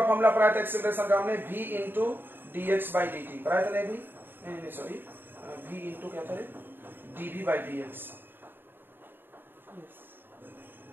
फॉर्मूला पढ़ाया था एक्सेलरेशन का हमने, v into dx by dt पढ़ाया था ना भी, नहीं सॉरी, v इंटू क्या था रे, dv बाय dx।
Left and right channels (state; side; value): late; left; 0.097 ms